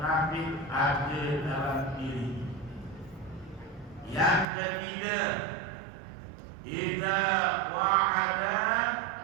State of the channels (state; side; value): drops out; left; at 4.5 s